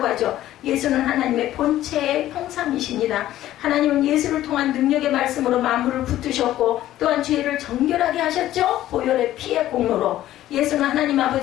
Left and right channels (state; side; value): quieter; right; 13.7 dB